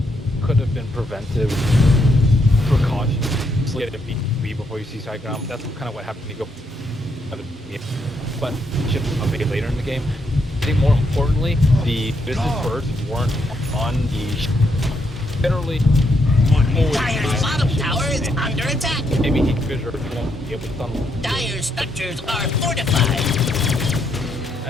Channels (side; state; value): both; normal; correlation 0.77